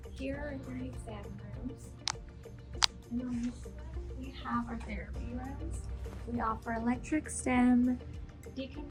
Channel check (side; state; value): both; identical; correlation 1.00